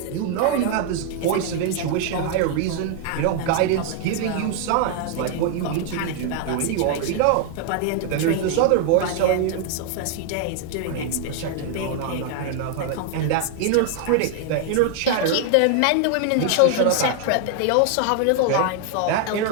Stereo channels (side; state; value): both; different; correlation 0.00